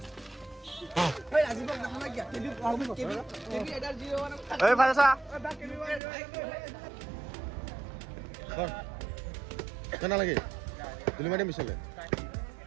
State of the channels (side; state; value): left; drops out; at 6.0 s